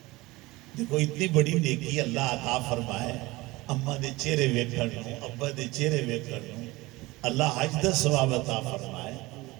دیکھو اتنی بڑی نیکی اللہ عطا فرمائے، اماں دے چہرے ویکھن نوں، ابا دے چہرے ویکھن نوں، اللہ حج دا ثواب عطا فرمائے،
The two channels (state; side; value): quieter; left; 21.0 dB